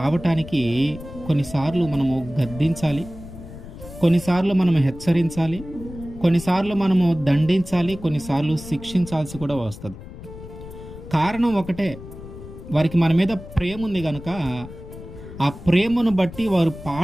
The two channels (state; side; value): noise; left; rumble, 14 dB below the sound